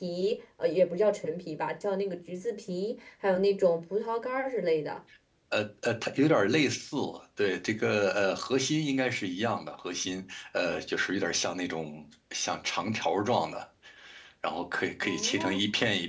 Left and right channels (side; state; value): both; identical; correlation 1.00